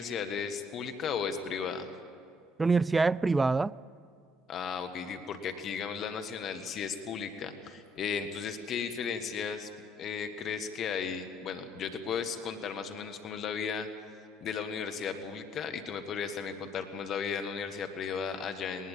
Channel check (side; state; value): both; normal; correlation 0.68